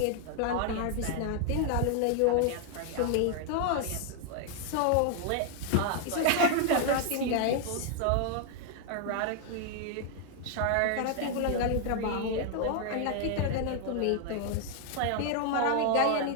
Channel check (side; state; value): both; different; correlation 0.00